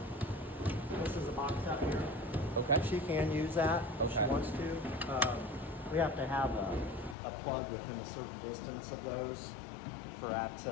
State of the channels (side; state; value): right; drops out; at 7.2 s